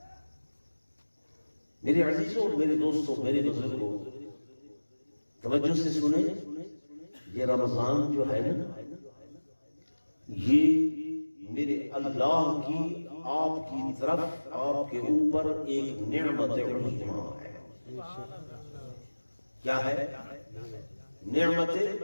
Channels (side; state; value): both; inverted; correlation -1.00